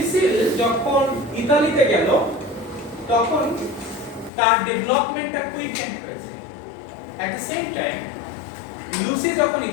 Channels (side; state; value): right; drops out; at 4.3 s